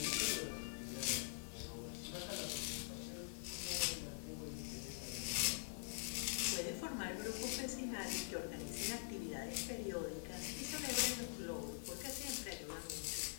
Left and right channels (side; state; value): right; silent; digital silence